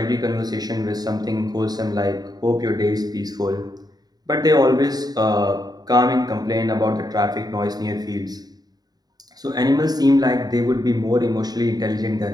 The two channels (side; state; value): left; late; 0.19 ms